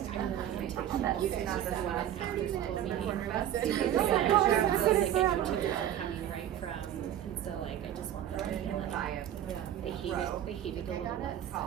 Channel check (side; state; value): left; quieter; 11.0 dB